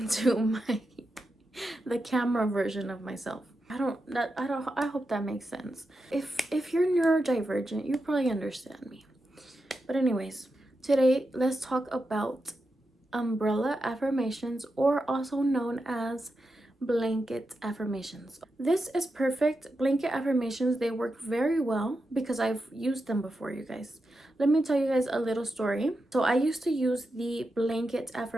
the camera version of myself. I hope that makes sense. If you're neurodivergent, you probably understand me. But anyways, today let's talk about umbrella affirmations, or also known as blanket affirmations. This is perfect. Blanket affirmations, they work very well because I've used them before, you guys. Let me tell you guys a little story. So I used to use the blanket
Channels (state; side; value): normal; both; correlation 0.88